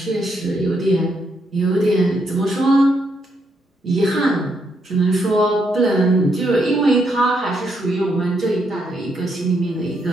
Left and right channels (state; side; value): normal; both; correlation 0.77